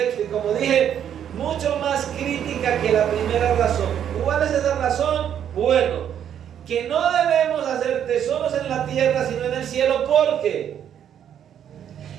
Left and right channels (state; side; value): quieter; left; 9.4 dB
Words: y como dije, mucho más crítica que la primera razón. ¿Cuál es esa razón? Bueno, que no debemos hacer tesoros en la tierra, sino en el cielo. ¿Por qué?